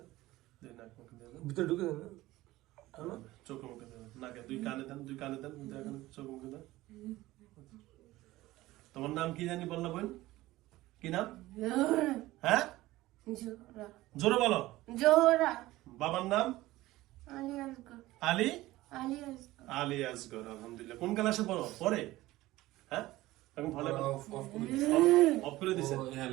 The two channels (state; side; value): quieter; left; 17.5 dB